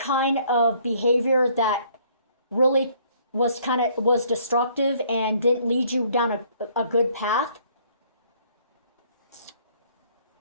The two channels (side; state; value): both; inverted; correlation -0.62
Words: of behavior that really was destructive and didn't lead you down a good path.